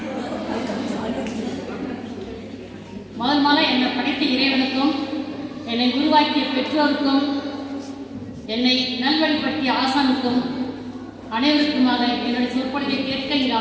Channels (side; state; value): both; identical; correlation 1.00